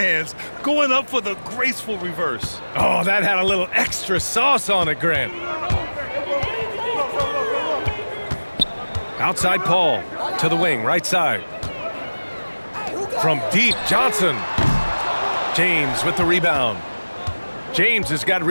going up for the graceful reverse. Oh, that had a little extra sauce on it, Grant. Outside Paul, to the wing, right side. From deep, Johnson. James with the rebound. James has got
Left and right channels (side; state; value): both; inverted; correlation -1.00